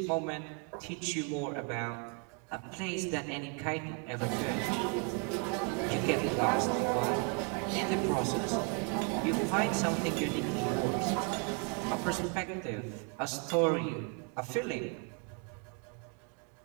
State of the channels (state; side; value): quieter; left; 34.9 dB